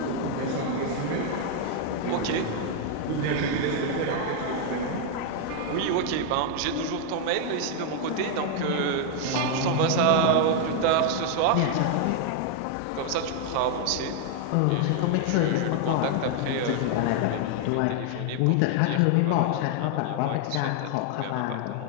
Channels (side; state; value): both; different; correlation 0.00